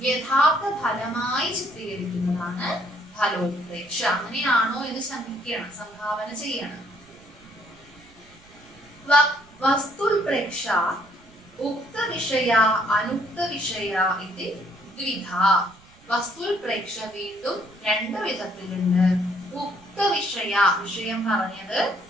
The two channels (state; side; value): noise; right; rumble, 27 dB below the sound